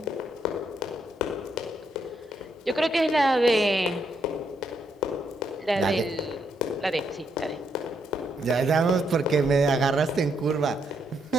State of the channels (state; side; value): normal; both; correlation 0.76